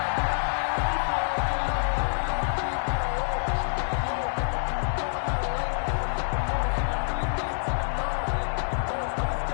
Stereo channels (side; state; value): right; silent; 60 dB below the other